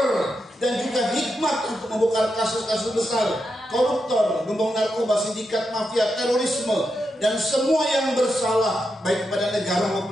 dan juga hikmat untuk membongkar kasus-kasus besar, koruptor, gembong narkoba, sindikat mafia, terorisme, dan semua yang bersalah baik kepada negara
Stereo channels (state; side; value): normal; both; correlation 0.86